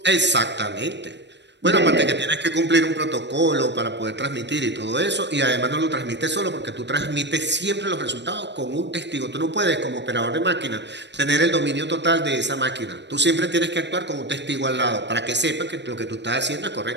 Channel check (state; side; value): late; left; 0.51 ms